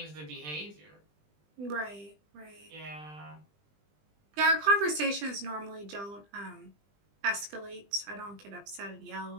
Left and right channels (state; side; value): late; left; 20 ms